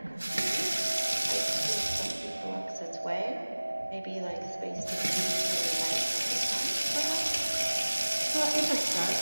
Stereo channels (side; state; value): both; inverted; correlation -1.00